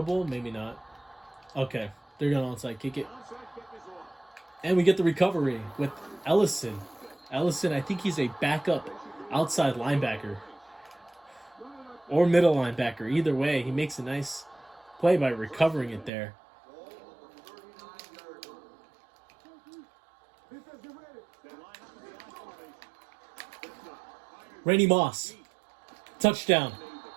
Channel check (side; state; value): left; drops out; at 16.1 s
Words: Maybe not. Okay. They're going to onside kick it. And we get the recovery with Ellison. Ellison, I think he's a backup outside linebacker. Or middle linebacker. Either way, he makes a nice play by recovering it there. Randy Moss. Touchdown.